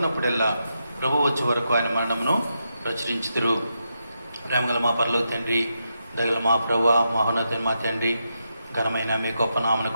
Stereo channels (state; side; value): inverted; both; correlation -0.84